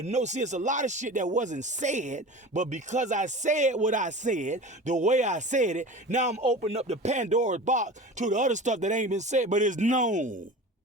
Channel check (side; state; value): both; normal; correlation 0.35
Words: know, see, it's a lot of shit that wasn't said, but because I said what I said, the way I said it, now I'm opening up the Pandora's box to the other stuff that ain't been said, but it's known.